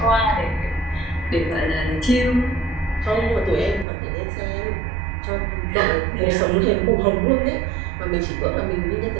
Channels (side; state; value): left; drops out; at 3.9 s